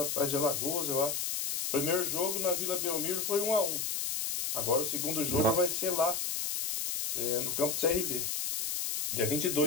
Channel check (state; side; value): noise; left; hiss, 1 dB below the sound